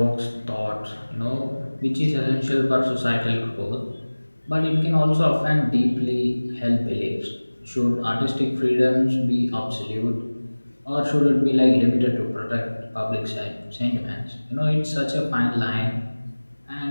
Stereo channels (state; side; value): inverted; both; correlation -1.00